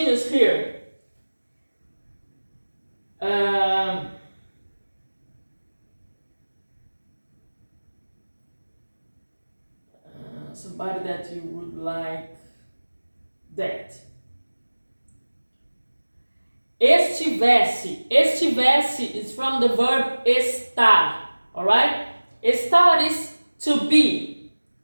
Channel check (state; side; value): inverted; both; correlation -1.00